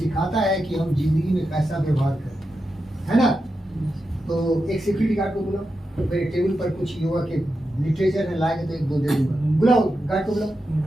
है कि हम जिंदगी में कैसा व्यवहार करें, है ना? तो एक सिक्योरिटी गार्ड को बुलाओ, मेरे टेबल पर कुछ योगा के लिटरेचर में लाएंगे तो एक दो दे दूंगा। बुलाओ गार्ड को, बुलाओ।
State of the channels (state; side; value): normal; both; correlation 0.89